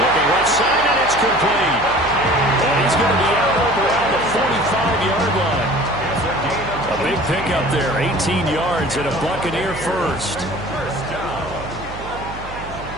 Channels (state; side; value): noise; right; hum, 13 dB below the sound